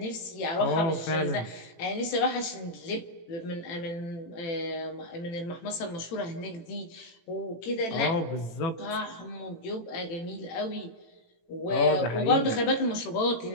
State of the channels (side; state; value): right; late; 18 ms